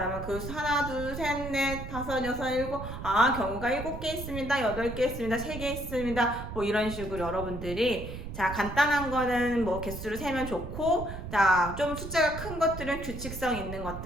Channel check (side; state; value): right; noise; rumble, 9 dB below the sound